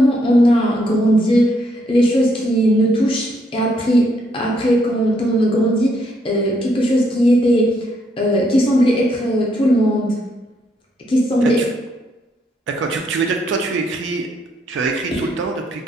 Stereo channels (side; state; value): both; normal; correlation 0.73